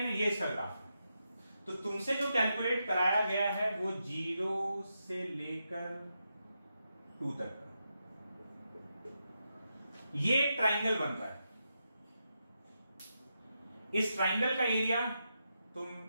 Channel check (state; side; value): inverted; both; correlation -0.86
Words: है, ये इसका ग्राफ है। तो तुमसे जो कैलकुलेट कराया गया है वो 0 से लेकर 2 तक का, ये ट्राइंगल बन रहा है। इस ट्राइंगल का एरिया